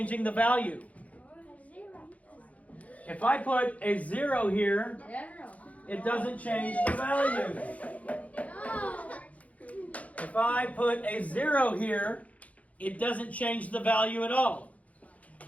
the value. If I put a 0 here, it doesn't change the value. If I put a 0 here, it doesn't change the value at all.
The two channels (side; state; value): right; late; 0.068 ms